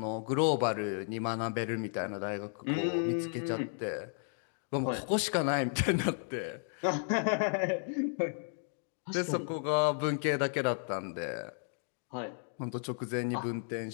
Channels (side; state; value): right; silent; 55 dB below the other